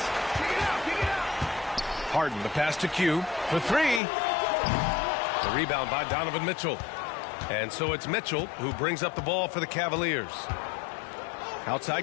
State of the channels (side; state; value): right; drops out; at 4.0 s